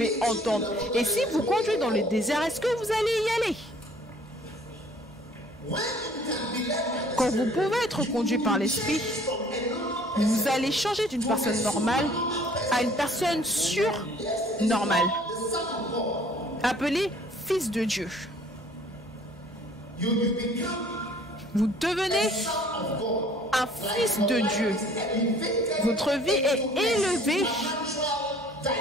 entendre? Et si vous conduisez dans le désert, est-ce que vous allez y aller? Quand vous pouvez être conduit par l'Esprit, vous allez changer d'une personne normale à une personne surnormale, appelée fils de Dieu. Vous devenez un fils de Dieu. Votre vie est élevée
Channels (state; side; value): normal; both; correlation 0.55